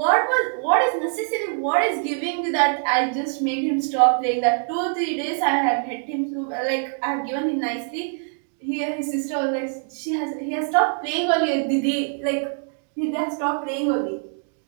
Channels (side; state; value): left; silent; digital silence